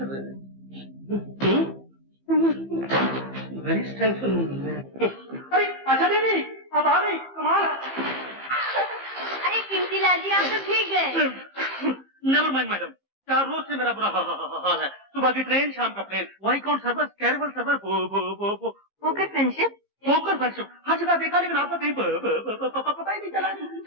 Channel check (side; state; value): right; late; 15 ms